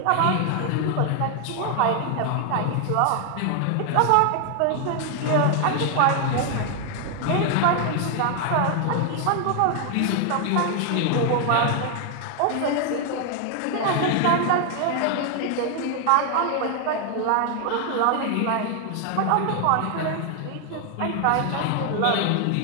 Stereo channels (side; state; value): both; different; correlation 0.00